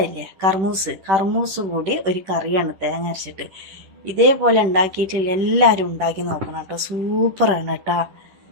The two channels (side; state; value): left; late; 10 ms